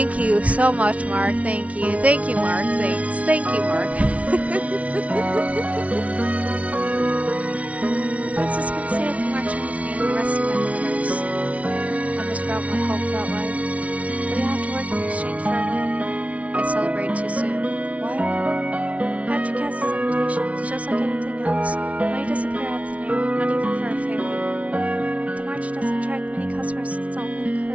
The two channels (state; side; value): late; left; 0.065 ms